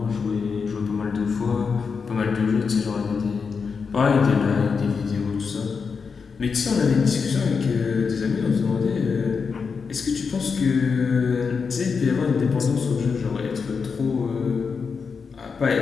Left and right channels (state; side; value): quieter; right; 5.5 dB